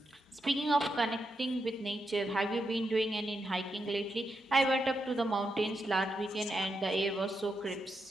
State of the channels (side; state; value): both; normal; correlation 0.84